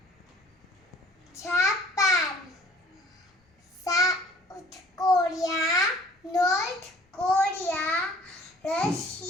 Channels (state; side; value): normal; both; correlation 0.54